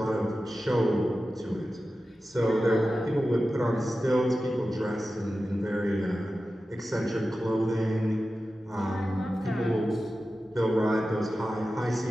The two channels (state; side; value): normal; both; correlation 0.94